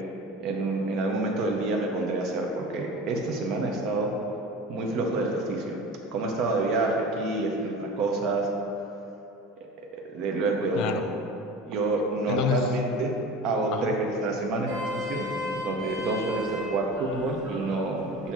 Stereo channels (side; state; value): both; normal; correlation 0.35